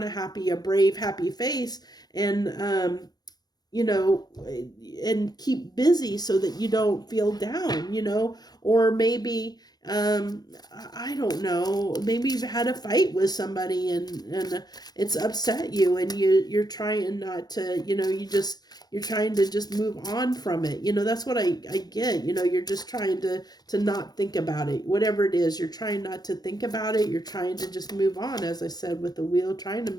a brave, happy face, and, and keep busy so that you don't feel down, or maybe I don't know, maybe you've had a fight with somebody and it's upset you, and you're trying not to, you're trying to just move on from it. That's what I get. You're just trying to not think about it. Whatever it is, you're trying not to think about it. You're trying to just move on, as I said with the wheel, trying to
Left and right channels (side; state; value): right; late; 0.19 ms